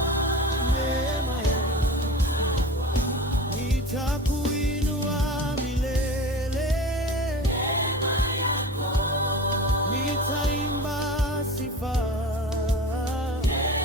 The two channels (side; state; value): both; normal; correlation 0.34